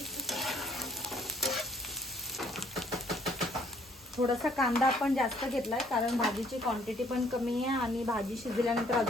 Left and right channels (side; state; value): both; normal; correlation 0.62